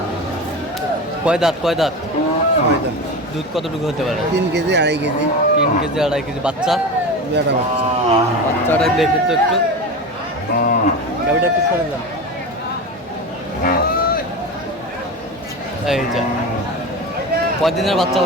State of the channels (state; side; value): normal; both; correlation 0.26